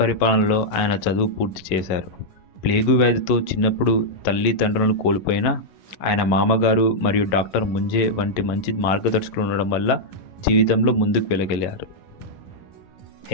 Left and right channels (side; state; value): right; late; 11 ms